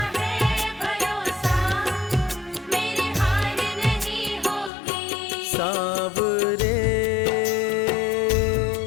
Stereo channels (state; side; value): drops out; right; at 4.7 s